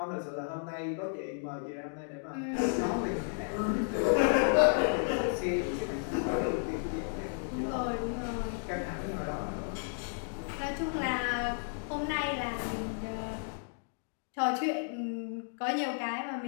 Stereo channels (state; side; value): silent; right; digital silence